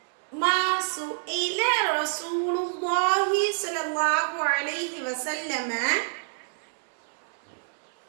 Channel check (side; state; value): left; silent; 60 dB below the other